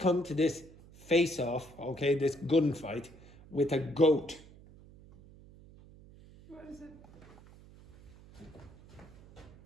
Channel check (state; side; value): noise; right; hum, 21 dB below the sound